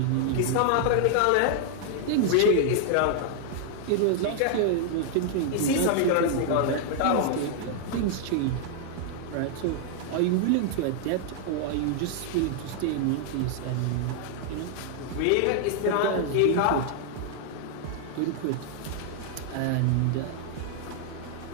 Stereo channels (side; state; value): both; different; correlation 0.00